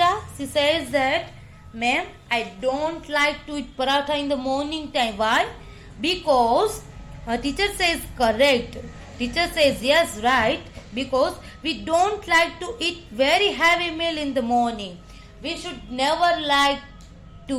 she says that, ma'am, I don't like to eat paratha in the morning time. Why? Because her teacher says correct. Teacher says yes, right. Because we don't like to eat very heavy meal in the morning. We should never like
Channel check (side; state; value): both; identical; correlation 1.00